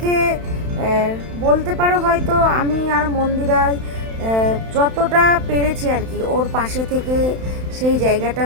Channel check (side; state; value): left; late; 31 ms